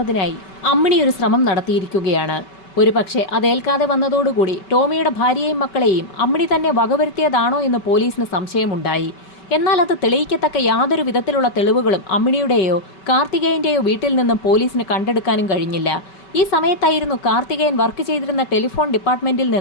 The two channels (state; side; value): late; right; 5.2 ms